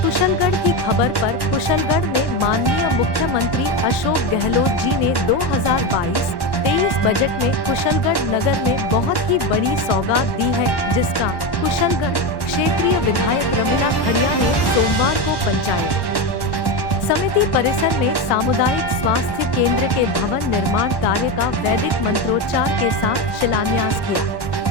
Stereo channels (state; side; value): late; right; 1.1 ms